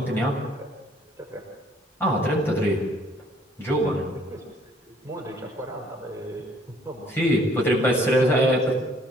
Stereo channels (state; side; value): normal; both; correlation 0.61